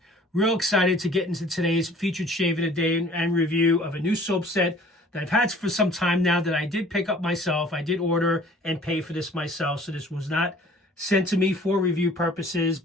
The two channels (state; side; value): normal; both; correlation 0.52